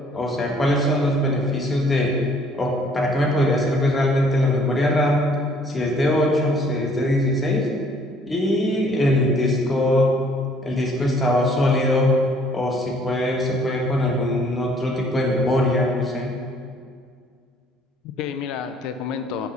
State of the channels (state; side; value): normal; both; correlation 0.60